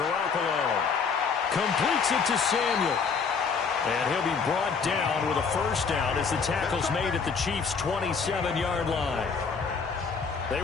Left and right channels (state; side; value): quieter; right; 5.5 dB